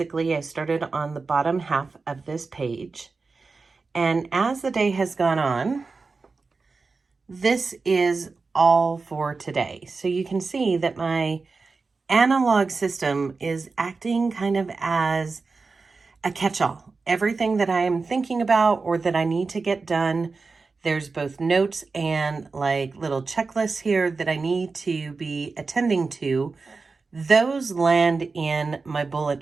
I started on the bottom half of this page, and as the day has gone on, this is all for today. So you can see that my analog system is acting kind of as a catch-all. Everything that I am thinking about or that I need to get done, there's both notes and like little checklists here that I need to be attending to. Those land in my bullet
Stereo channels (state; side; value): quieter; left; 4.2 dB